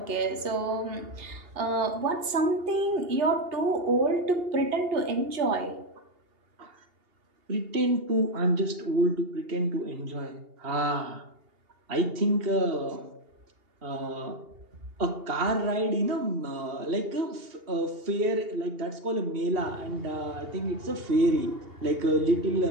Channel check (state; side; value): late; left; 2.8 ms